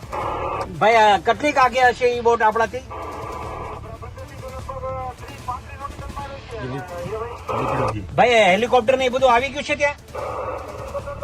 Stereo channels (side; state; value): both; identical; correlation 1.00